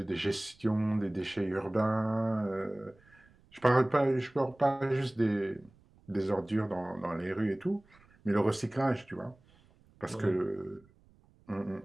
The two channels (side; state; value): right; noise; rumble, 29 dB below the sound